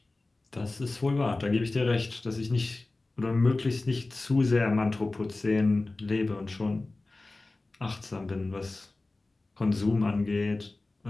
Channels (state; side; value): quieter; right; 3.1 dB